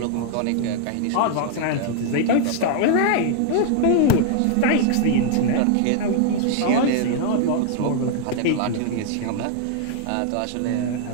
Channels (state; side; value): different; both; correlation 0.00